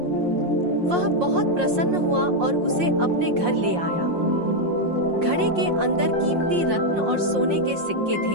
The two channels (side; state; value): left; late; 5.6 ms